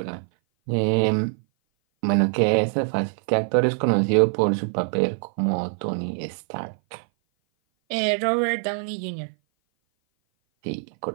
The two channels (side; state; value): left; silent; 57 dB below the other